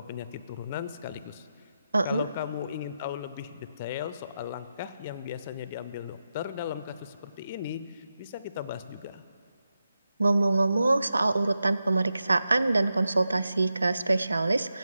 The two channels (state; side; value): inverted; both; correlation -0.88